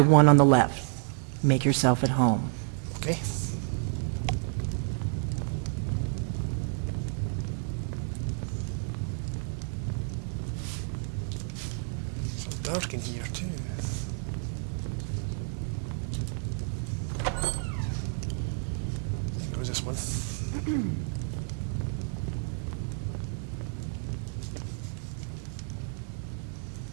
one on the left. Make yourself at home. Okay. So dark in here too. I think it was this one.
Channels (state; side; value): silent; left; 58 dB below the other